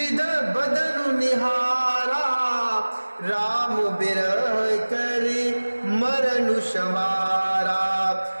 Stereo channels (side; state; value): both; inverted; correlation -1.00